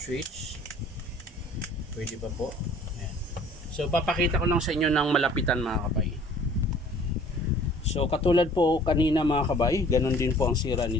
Pwede pa po. Ayan. So papakita ko lang sa inyo ng malapitan mga kabay. So katulad po kanina mga kabay, ganun din po ang sira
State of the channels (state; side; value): normal; both; correlation 0.52